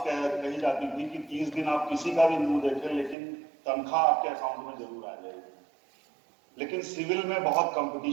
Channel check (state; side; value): drops out; left; at 3.2 s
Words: कही जाती थी कि 30 दिन आप किसी का भी मुंह देखें, लेकिन तनख्वाह आपके अकाउंट में जरूर आ जाएगी। लेकिन सिविल में बहुत